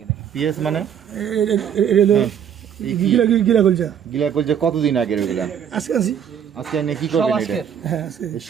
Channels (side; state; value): left; quieter; 8.6 dB